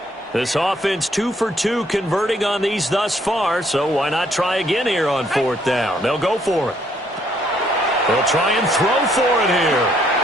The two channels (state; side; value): normal; both; correlation 0.67